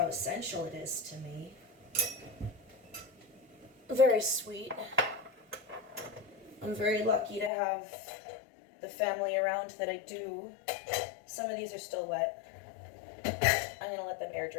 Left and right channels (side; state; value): right; drops out; at 7.5 s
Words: essential it is to me. Very sweet. I'm very lucky to have the family around that I do. Some of these are still wet. I'm going to let them air